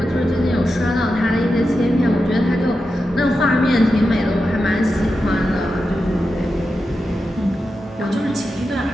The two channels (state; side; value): normal; both; correlation 0.90